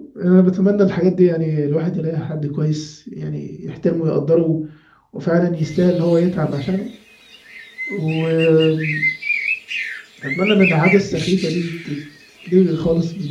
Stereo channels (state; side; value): identical; both; correlation 1.00